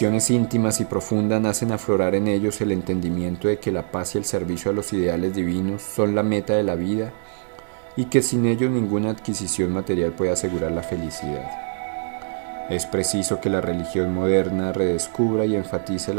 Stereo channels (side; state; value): left; silent; 63 dB below the other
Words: íntimas y profundas hacen aflorar en ellos el entendimiento de que la paz y el servicio a los ideales divinos son la meta de la vida y que sin ellos ninguna adquisición material puede asegurar la felicidad. Es preciso que la religión moderna redescubra y enfatice